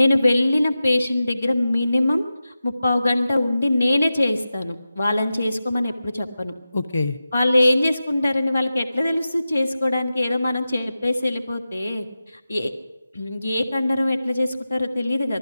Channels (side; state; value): both; inverted; correlation -0.93